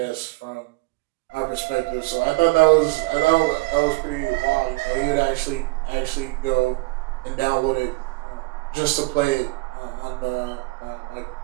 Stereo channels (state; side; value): quieter; left; 25.0 dB